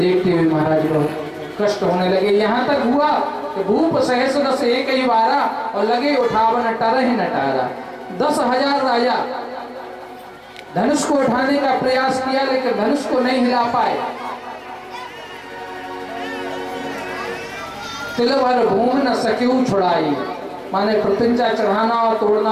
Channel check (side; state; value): both; identical; correlation 1.00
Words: हुए महाराज बहुत कष्ट होने लगे। यहाँ तक हुआ कि भूप सहस रस एक ही बारा और लगे उठावन टरह न टारा। 10,000 राजा धनुष को उठाने का प्रयास किया, लेकिन धनुष को नहीं हिला पाए। तिल भर भूमि न सकेऊ छुड़ाई, माने प्रतिज्ञा चढ़ाना और